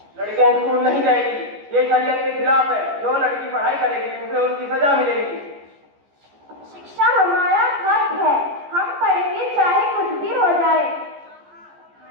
लड़कियां स्कूल नहीं जाएगी, ये शरीयत के खिलाफ है। जो लड़की पढ़ाई करेगी उसे उसकी सजा मिलेगी। शिक्षा हमारा हक है, हम पढ़ेंगे चाहे कुछ भी हो जाए।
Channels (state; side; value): late; left; 14 ms